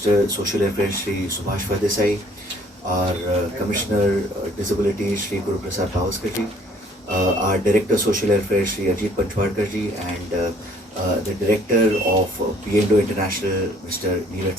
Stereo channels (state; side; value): normal; both; correlation 0.59